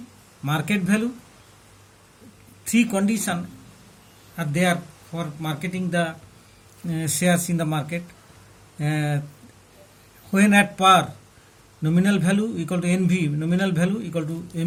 market value. Three conditions are there for marketing the shares in the market. When at par, nominal value equal to NV, nominal value equal to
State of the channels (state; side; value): identical; both; correlation 1.00